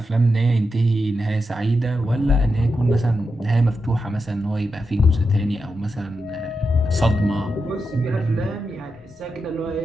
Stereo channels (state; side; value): normal; both; correlation 0.87